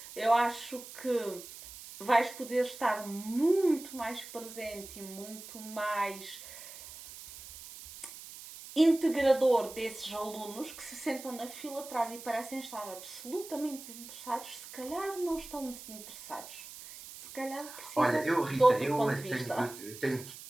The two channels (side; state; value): right; noise; hiss, 14 dB below the sound